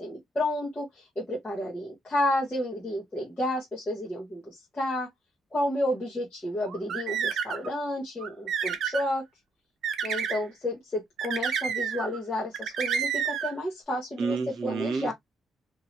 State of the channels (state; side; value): normal; both; correlation 0.72